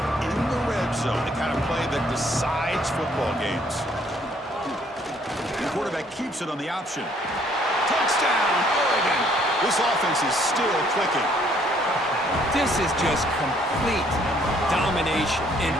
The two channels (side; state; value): both; normal; correlation 0.64